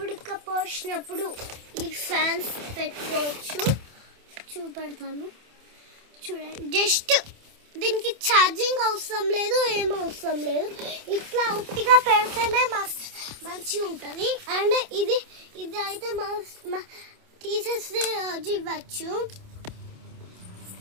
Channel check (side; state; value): left; late; 27 ms